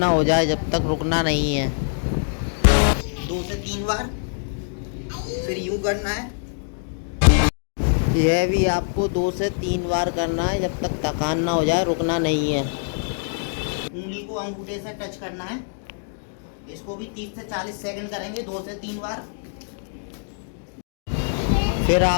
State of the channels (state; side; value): silent; right; digital silence